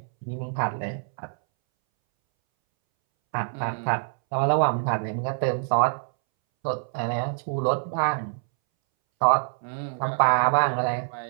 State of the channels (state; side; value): silent; left; 61 dB below the other